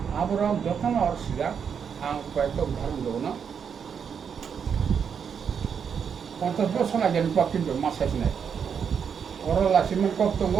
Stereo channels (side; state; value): left; quieter; 7.1 dB